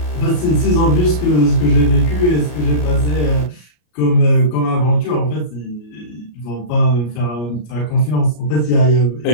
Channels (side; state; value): right; late; 33 ms